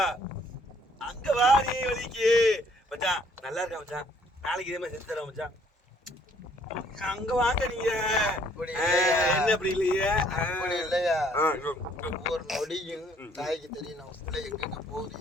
அங்க வாரி வலிக்கு மச்சான் நல்லா இருக்கா மச்சான், நாளைக்கு இதே மாதிரி செஞ்சு தரேன் மச்சான். அங்க வாங்க நீங்க என்ன அப்படி இல்லையே. இல்லையா ஒவ்வொரு நொடியும் தாய்க்கு தெரியும் நம்ம பிள்ளை எங்க போகுது,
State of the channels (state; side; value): normal; both; correlation 0.63